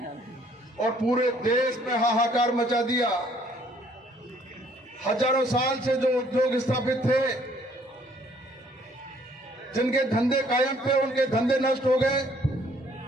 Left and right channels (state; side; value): normal; both; correlation 0.62